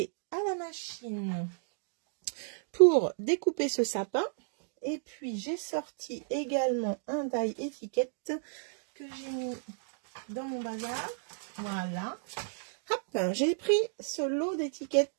à la machine pour découper ce sapin. Et puis, j'ai sorti également un die étiquette que j'ai mis dans mon bazar. Voilà. Hop, j'ai pris ce lot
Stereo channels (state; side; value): silent; left; digital silence